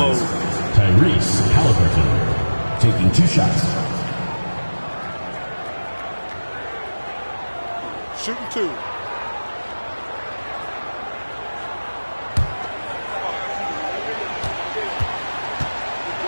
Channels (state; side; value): inverted; both; correlation -1.00